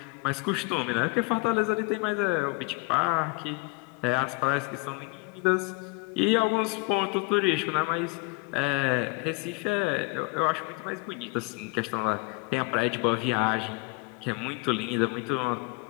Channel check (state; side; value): quieter; right; 28.5 dB